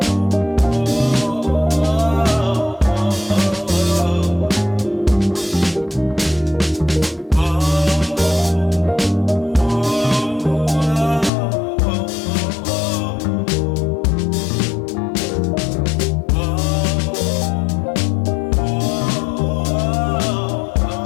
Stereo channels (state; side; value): drops out; right; at 11.3 s